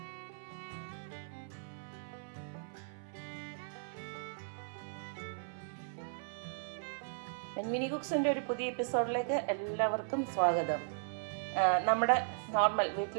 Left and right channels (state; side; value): silent; left; 53 dB below the other